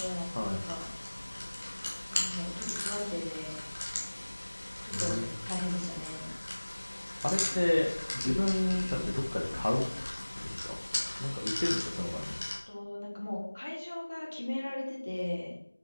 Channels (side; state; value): both; inverted; correlation -1.00